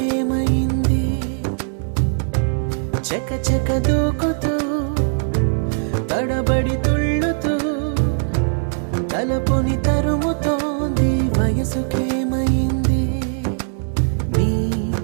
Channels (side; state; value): left; silent; digital silence